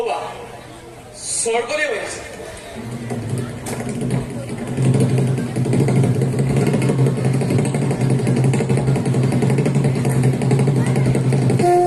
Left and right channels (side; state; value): both; identical; correlation 1.00